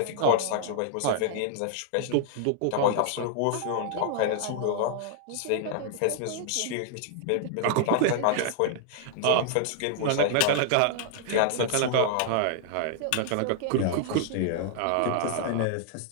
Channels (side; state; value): both; different; correlation -0.01